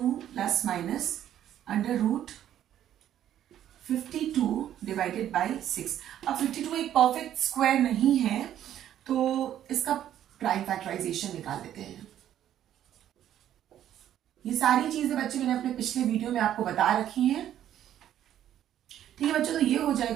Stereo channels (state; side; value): quieter; left; 11.2 dB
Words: plus minus under root 52 divided by 6। अब 52 एक परफेक्ट स्क्वायर नहीं है तो इसका प्राइम फैक्टराइजेशन निकाल लेते हैं। ये सारी चीजें बच्चे मैंने अपने पिछले वीडियो में आपको बता रखी हैं। ठीक है बच्चों, तो ये हो